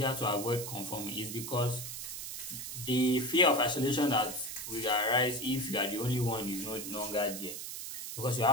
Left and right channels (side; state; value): right; noise; hiss, 7 dB below the sound